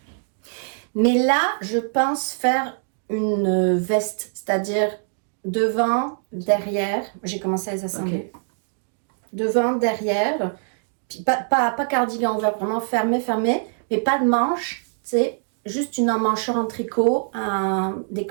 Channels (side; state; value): left; silent; digital silence